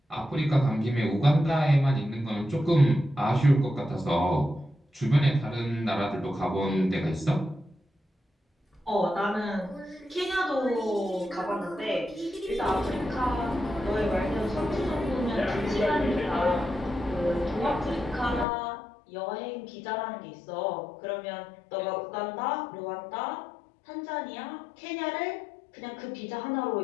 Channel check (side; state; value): right; drops out; at 18.4 s